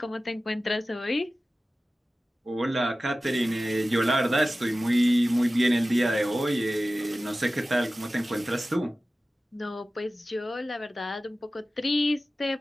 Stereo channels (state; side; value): normal; both; correlation 0.96